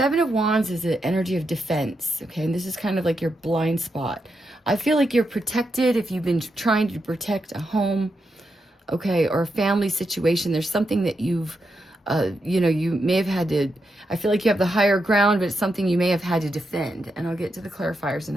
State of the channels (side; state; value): both; normal; correlation 0.85